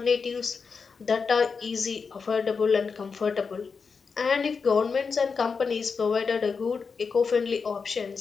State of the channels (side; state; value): right; quieter; 5.3 dB